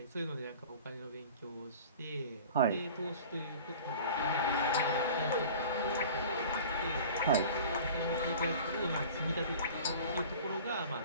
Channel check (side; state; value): both; inverted; correlation -0.42